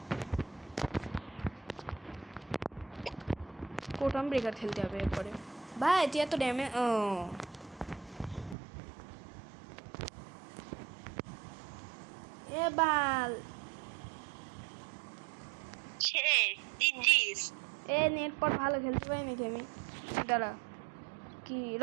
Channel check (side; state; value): left; drops out; at 8.6 s